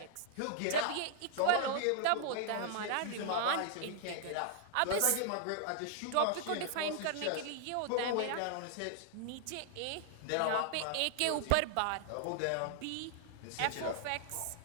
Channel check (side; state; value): both; different; correlation -0.01